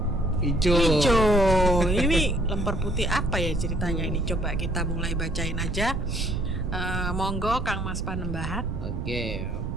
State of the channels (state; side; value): noise; right; rumble, 6 dB below the sound